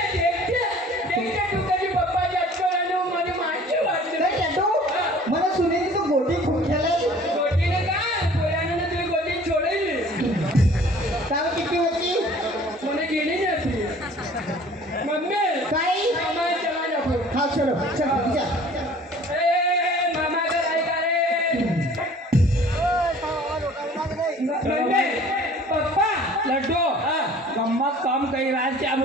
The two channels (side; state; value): both; normal; correlation 0.50